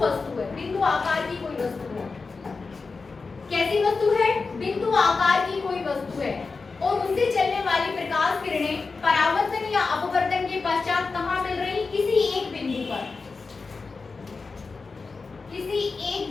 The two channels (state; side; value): quieter; right; 4.3 dB